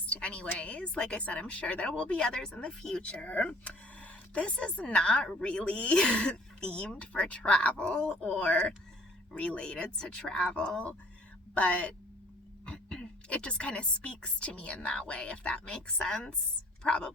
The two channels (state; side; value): normal; both; correlation 0.54